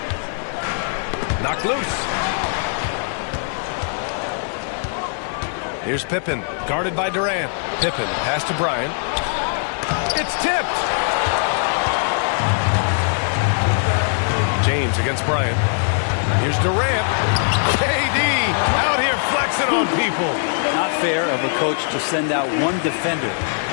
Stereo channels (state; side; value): silent; right; 55 dB below the other